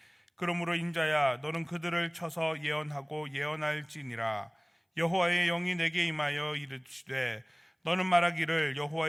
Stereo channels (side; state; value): both; identical; correlation 1.00